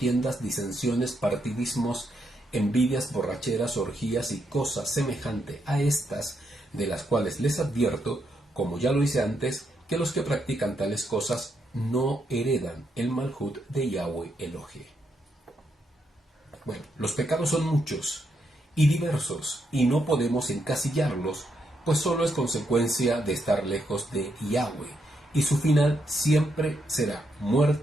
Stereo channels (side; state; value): both; normal; correlation 0.79